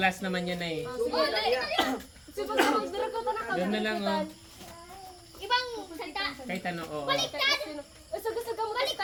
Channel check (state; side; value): identical; both; correlation 1.00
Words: naman yan na eh. Sige, pag-dira ko na Doon na lang, oh. Ibang salita. Kahit ano, oo. Baliktad. Gusto mo kasi